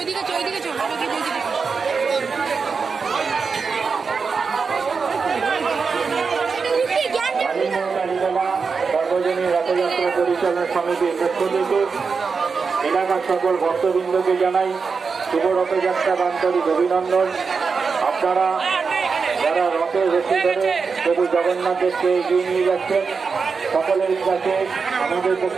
সর্বজনীন রথযাত্রা পরিচালনা সমিতির পক্ষ থেকে এলাকার সকল ভক্তবৃন্দকে জানাই শুভ রথযাত্রা আন্তরিক অভিনন্দন। আপনারা যারা রথের রশি ধরে প্রভু জগন্নাথ দেবকে এগিয়ে নিয়ে যাচ্ছেন, সকলের কাছে আমাদের পক্ষ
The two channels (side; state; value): left; quieter; 5.2 dB